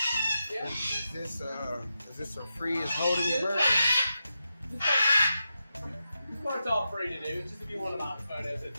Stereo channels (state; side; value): inverted; both; correlation -0.88